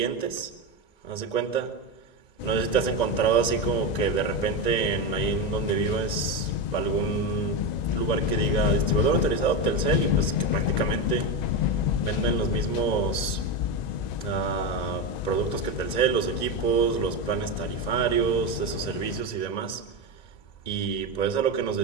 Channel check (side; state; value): right; late; 2.0 ms